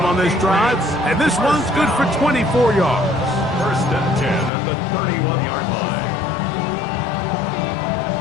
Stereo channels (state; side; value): drops out; right; at 4.5 s